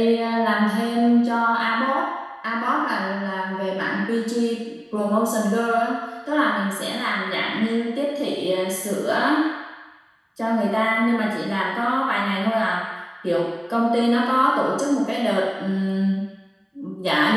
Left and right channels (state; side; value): identical; both; correlation 1.00